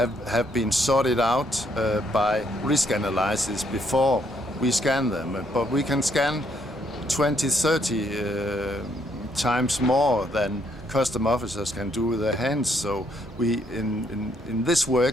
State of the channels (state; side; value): normal; both; correlation 0.71